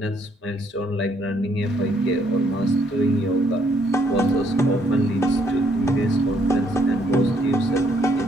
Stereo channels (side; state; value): both; normal; correlation 0.69